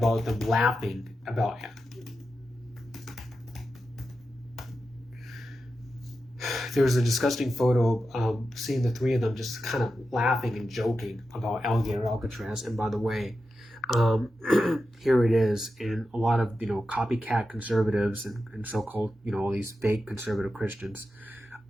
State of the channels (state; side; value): normal; both; correlation 0.90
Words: them laughing about it. There was a disgusting photo of seeing the three of them just kind of laughing and joking about Alligator Alcatraz. And by the way, here it is. And a lot of, you know, copycat conservatives and so-called, you know, all these fake conservative Christians,